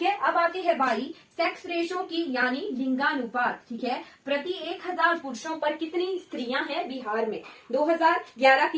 है, अब आती है बारी सेक्स रेशो की यानी लिंगानुपात। ठीक है, प्रति 1000 पुरुषों पर कितनी स्त्रियां हैं बिहार में, 2011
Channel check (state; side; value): identical; both; correlation 1.00